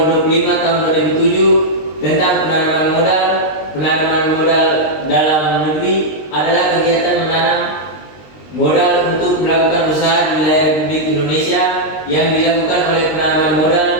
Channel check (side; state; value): right; late; 20 ms